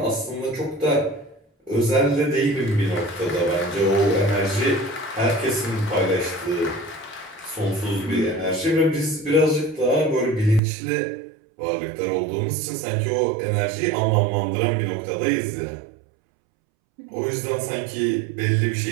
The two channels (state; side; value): drops out; left; at 10.6 s